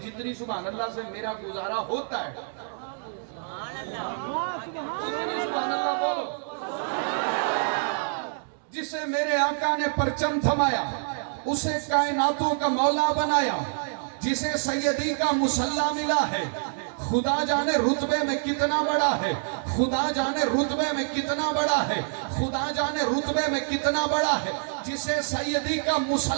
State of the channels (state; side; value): silent; left; digital silence